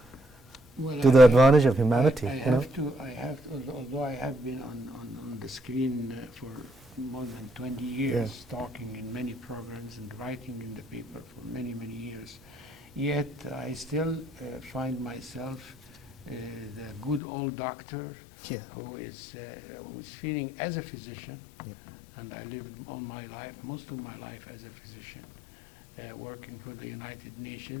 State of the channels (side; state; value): right; drops out; at 17.2 s